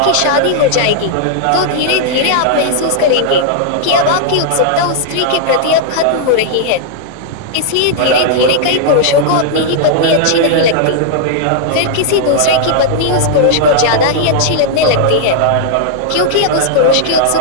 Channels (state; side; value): different; both; correlation -0.01